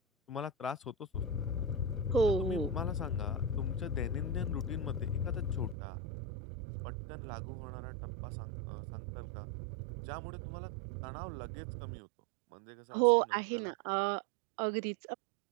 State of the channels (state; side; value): drops out; left; at 5.8 s